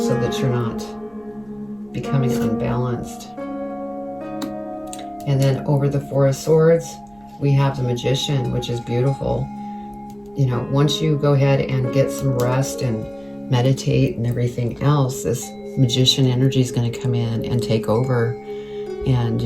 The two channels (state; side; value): noise; right; rumble, 30 dB below the sound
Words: so that you're not becoming unbalanced. And then over the Four of Swords, we have the Magician, which is beautiful. You know, once you go ahead and get some rest and meditate and everything else, this Magician energy is going to come in and take over. And